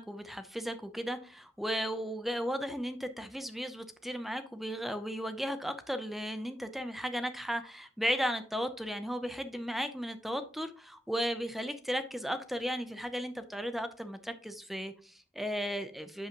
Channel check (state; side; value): normal; both; correlation 0.87